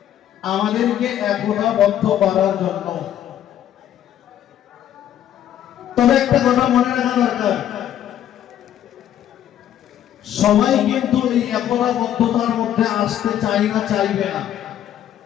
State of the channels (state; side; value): quieter; right; 11.0 dB